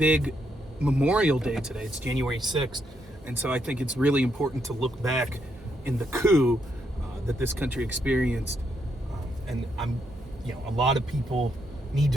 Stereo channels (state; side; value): normal; both; correlation 0.77